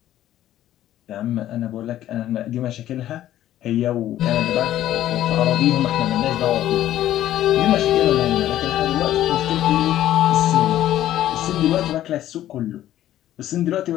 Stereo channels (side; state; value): right; quieter; 12.9 dB